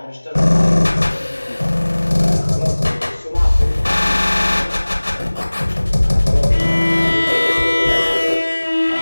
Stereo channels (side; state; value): both; inverted; correlation -1.00